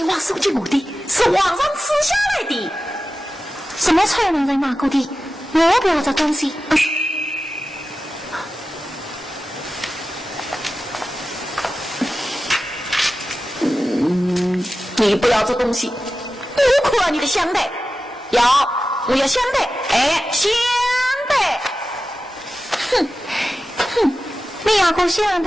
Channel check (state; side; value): normal; both; correlation 0.94